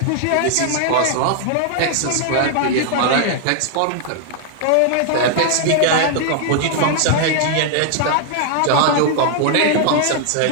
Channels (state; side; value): different; both; correlation 0.00